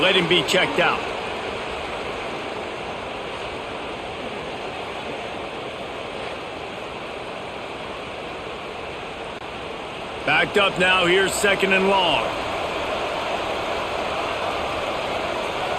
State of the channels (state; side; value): identical; both; correlation 1.00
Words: him be checked out. Backed up now, here's 2nd and long.